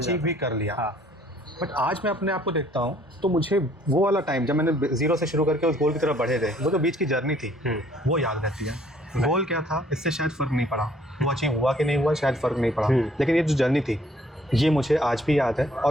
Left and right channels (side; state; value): both; normal; correlation 0.61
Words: भी कर लिया। बट आज मैं अपने आप को देखता हूँ तो मुझे वो वाला टाइम जब मैंने जीरो से शुरू करके उस गोल की तरफ बढ़े थे, वो जो बीच की जर्नी थी वो याद रहती है। गोल क्या था इससे शायद फ़र्क नहीं पड़ा, वो अचीव हुआ कि नहीं हुआ शायद फ़र्क नहीं पड़ा, लेकिन ये जो जर्नी थी ये मुझे आज भी याद है।